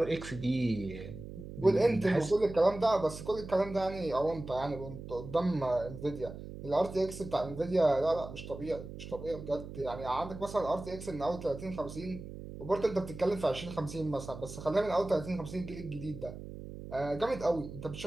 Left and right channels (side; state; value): right; noise; hum, 11 dB below the sound